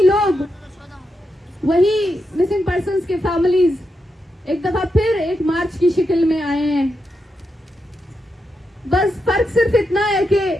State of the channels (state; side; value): normal; both; correlation 0.85